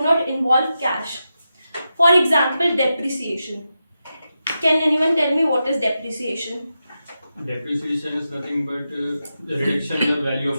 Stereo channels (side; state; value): both; inverted; correlation -0.89